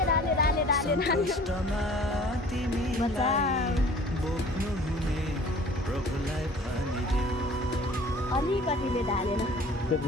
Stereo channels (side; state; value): both; normal; correlation 0.49